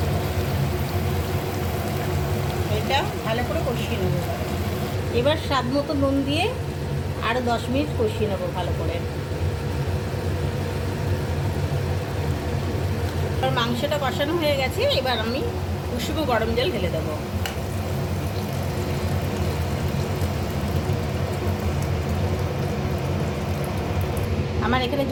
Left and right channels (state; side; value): identical; both; correlation 1.00